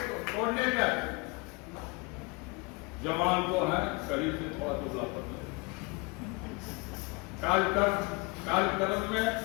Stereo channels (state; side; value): quieter; right; 28.5 dB